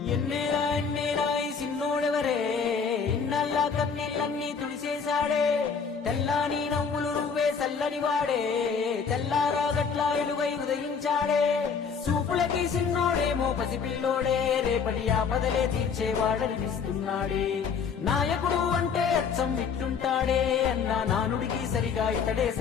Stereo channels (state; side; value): quieter; right; 6.0 dB